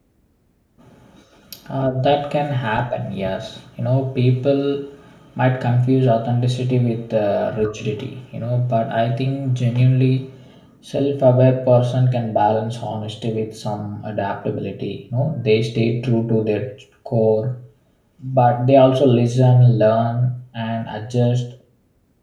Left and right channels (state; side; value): identical; both; correlation 1.00